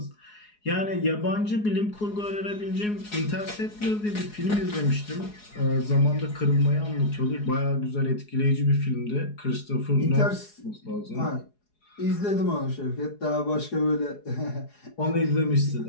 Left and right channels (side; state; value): right; late; 4.8 ms